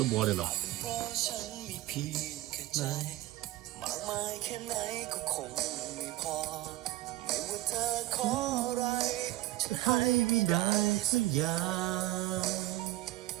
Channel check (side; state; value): left; quieter; 16.7 dB